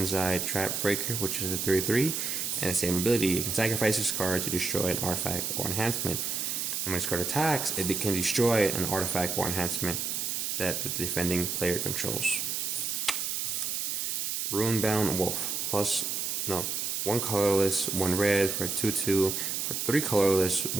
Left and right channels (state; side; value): noise; right; hiss, 1 dB below the sound